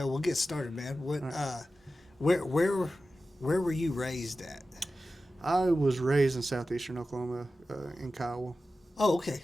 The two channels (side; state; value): both; normal; correlation 0.94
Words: we'll get started, man. What? Right. Where were you raised at? I was raised in southeastern Oklahoma, in Kiowa. Oh, okay.